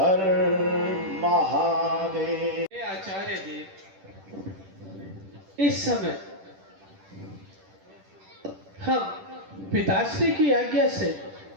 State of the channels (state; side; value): late; left; 10 ms